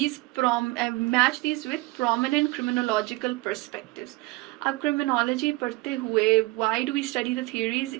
with prominent criminological perspectives. अब criminology पढ़ते हुए, why do we study the theories,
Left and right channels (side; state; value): left; quieter; 21.8 dB